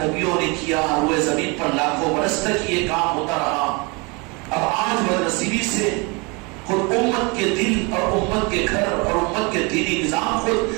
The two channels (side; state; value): left; quieter; 29.0 dB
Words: نبیوں نے کیا، روئے زمین پر لاکھوں برس تک یہ کام ہوتا رہا۔ اب آج بدنصیبی سے خود امت کے دل اور امت کے گھر اور امت کے دینی نظام خود